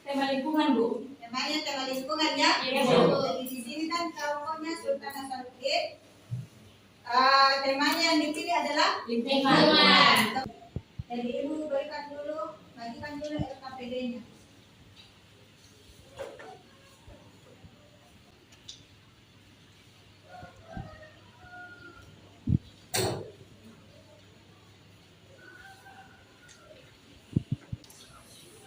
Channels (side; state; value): both; identical; correlation 1.00